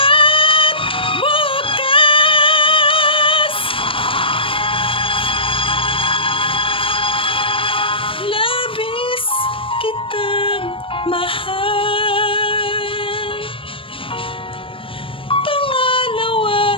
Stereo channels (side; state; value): right; late; 0.25 ms